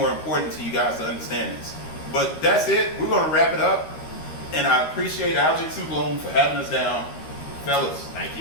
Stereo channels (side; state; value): right; late; 13 ms